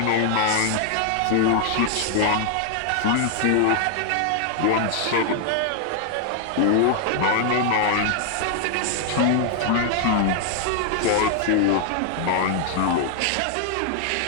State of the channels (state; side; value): different; both; correlation 0.00